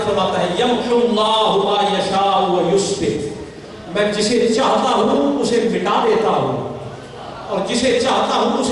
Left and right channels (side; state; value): both; identical; correlation 1.00